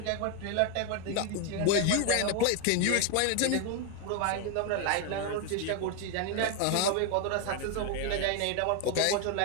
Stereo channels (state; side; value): different; both; correlation 0.01